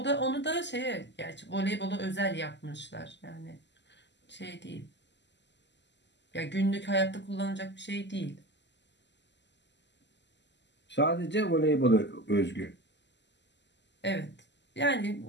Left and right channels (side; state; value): right; late; 0.51 ms